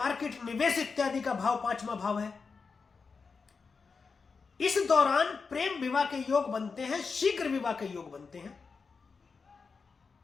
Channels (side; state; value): right; quieter; 5.0 dB